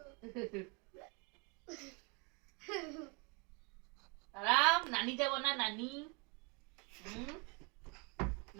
আরাম নানি যাব না নানি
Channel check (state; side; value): quieter; left; 31.8 dB